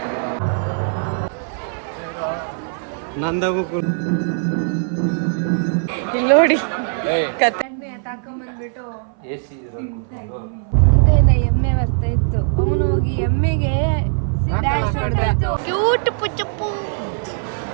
ನಂದಾಗೂ ಇಲ್ಲಿ ನೋಡಿ ಕತೆ ತಾಕೊಂಬಂದ್ಬಿಟ್ಟು ಮುಂದೆಯಿಂದ ಎಮ್ಮೆ ಬರ್ತಾ ಇತ್ತು. ಅವನು ಹೋಗಿ ಎಮ್ಮೆಗೆ ಡ್ಯಾನ್ಸ್ ಹೊಡೆದ. ಕ್ಯೂಟ್ ಪುಚ್ಚಪ್ಪು.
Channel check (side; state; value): left; silent; 58 dB below the other